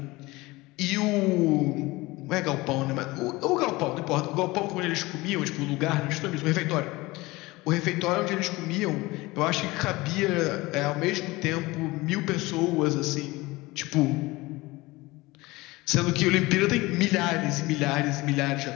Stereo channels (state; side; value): quieter; right; 21.2 dB